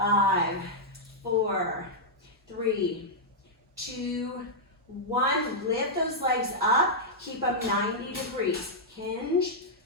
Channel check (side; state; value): both; normal; correlation -0.07